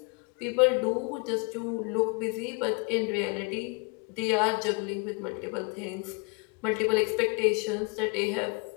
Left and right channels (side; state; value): right; quieter; 34.0 dB